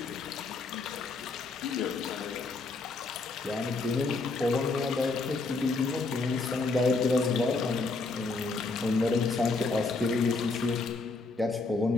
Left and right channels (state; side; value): quieter; right; 3.7 dB